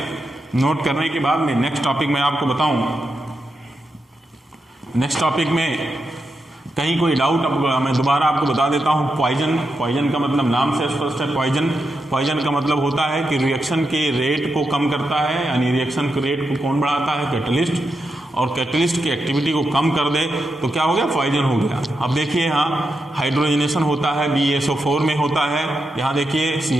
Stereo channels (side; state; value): both; normal; correlation 0.86